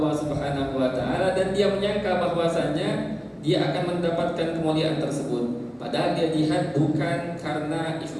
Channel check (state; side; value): identical; both; correlation 1.00